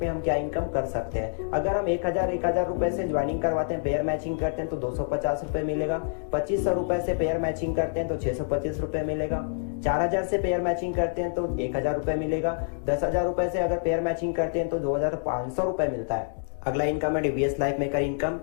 में हम क्या इनकम कर सकते हैं। अगर हम 1000 रुपए से ज्वाइनिंग करवाते हैं, पेयर मैचिंग करते हैं तो 250 रुपए मिलेगा। 2500 रुपए से पेयर मैचिंग करते हैं तो 625 रुपए मिलेगा। 4000 से पेयर मैचिंग करते हैं तो 1000 रुपए मिलेगा। 10,000 रुपए से अगर पेयर मैचिंग करते हैं तो 2500 रुपए मिलता है। अगला इनकम है डीवीएस लाइफ मेकर इनकम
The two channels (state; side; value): silent; right; digital silence